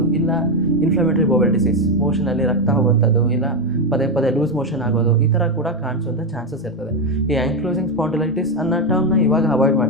ಇಲ್ಲ ಇನ್ಫ್ಲಮೇಟರಿ ಬೌಲ್ ಡಿಸೀಸ್, ಮೋಷನಲ್ಲಿ ರಕ್ತ ಹೋಗುವಂಥದ್ದು, ಇಲ್ಲ ಪದೇ ಪದೇ ಲೂಸ್ ಮೋಷನ್ ಆಗೋದು, ಈ ಥರ ಕೂಡ ಕಾಣಿಸುವಂಥ ಚಾನ್ಸಸ್ ಇರ್ತದೆ. ಈ ಆ್ಯಂಕ್ಲೋಸಿಂಗ್ ಸ್ಪಾಂಡಿಲೈಟಿಸ್ ಅನ್ನೋ ಟರ್ಮ್ನ ಇವಾಗ ಅವಾಯ್ಡ್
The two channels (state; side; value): normal; both; correlation 0.08